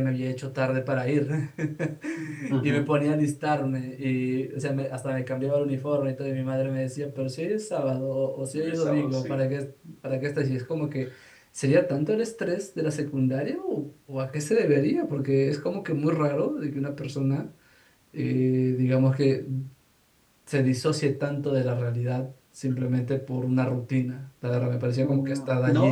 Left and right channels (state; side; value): identical; both; correlation 1.00